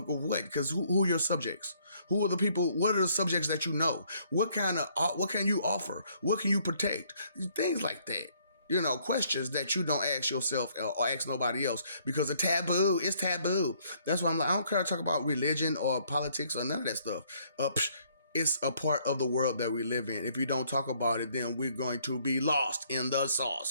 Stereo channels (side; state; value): both; inverted; correlation -0.66